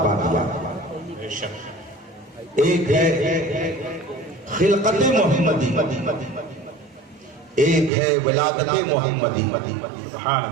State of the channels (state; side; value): drops out; left; at 7.9 s